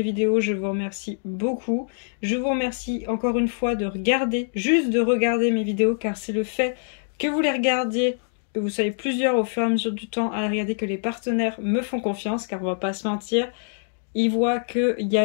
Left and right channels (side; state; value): right; silent; digital silence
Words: vidéos. Je vous remercie beaucoup. Je vous remercie encore une fois de regarder, juste de regarder mes vidéos car c'est le fait que vous les regardiez, que vous soyez plusieurs au fur et à mesure du temps à regarder que les partenaires me font confiance car on va pas se mentir. Ils voient qu'il y